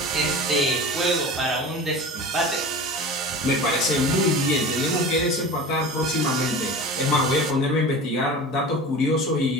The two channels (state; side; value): normal; both; correlation 0.34